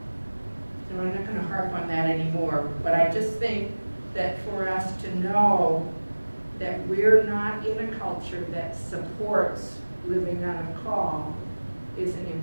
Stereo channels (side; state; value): both; inverted; correlation -1.00